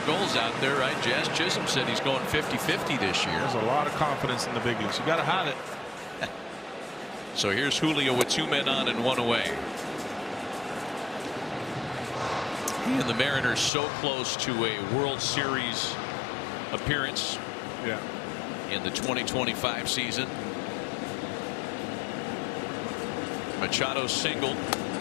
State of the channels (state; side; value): drops out; right; at 13.7 s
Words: goals out there, right? Jazz Chisholm said he's going 50-50 this year. There's a lot of confidence in the big leagues. You got to have it. So here's Julio with 2 men on and 1 away. And the Mariners so close to a World Series appearance in the 2025 season. Machado singled.